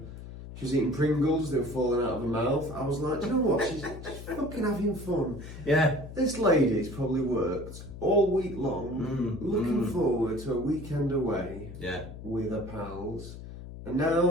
She was eating Pringles, they were falling out of her mouth. I was like, do you know what? She's fucking having fun. Yeah. This lady's probably worked all week long, looking forward to a weekend away with her pals. And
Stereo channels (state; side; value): noise; left; hum, 12 dB below the sound